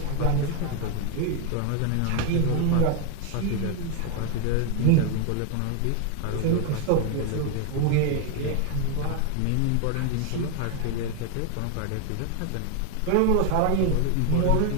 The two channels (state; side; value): different; both; correlation 0.01